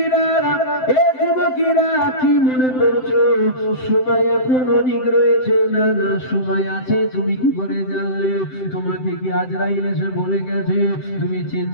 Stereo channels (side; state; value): right; late; 7.8 ms